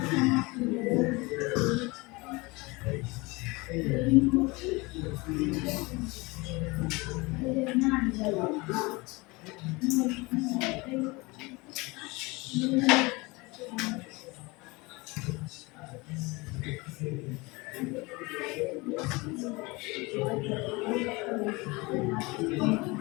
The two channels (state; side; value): quieter; right; 24.7 dB